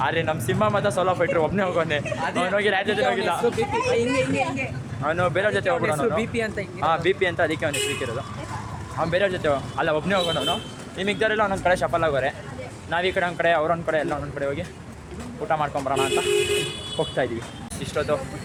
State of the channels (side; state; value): both; identical; correlation 1.00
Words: ಆದರೆ ನಮ್ಮ ಸಿಂಹ ಮತ್ತು ಸೋಲೋ ಫೈಟ್ರು ಒಬ್ಬನೇ ಹೋಗೋನೆ. ಅವನು ಹೋಗಿ ಯಾರ ಜೊತೆ ಹೋಗಿಲ್ಲ, ಅವನು ಬೇರೆಯವ್ರ ಜೊತೆ ಹೋಗ್ಬಿಡೋನು. ಹಾಂ BP ಅಂತ ಅದಕ್ಕೆ ಅವನು ಸಿಕ್ಕಿರೋದು. ಅವ್ನು ಬೇರೆಯವ್ರ ಜೊತೆ ಅಲ್ಲ ಒಬ್ಬನೇ ಹೋಗೋಣ ಅವನು. ಈ ಮಿಕ್ದವರೆಲ್ಲ ಒಂದೊಂದು ಕಡೆ ಶಫಲ್ ಆಗೋರೆ. ನಾವು ಈ ಕಡೆ ಒಂದು ಕಡೆ ಅವರೊಂದು ಕಡೆ ಎಲ್ಲ ಒಂದೊಂದು ಕಡೆ ಹೋಗಿ ಊಟ ಮಾಡ್ಕೊಂಬರೋಣ ಅಂತ ಹೋಗ್ತಾ ಇದ್ದೀವಿ. ಇಷ್ಟೊತ್ತು